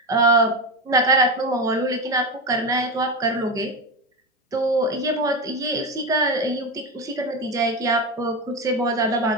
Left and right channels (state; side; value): normal; both; correlation 0.17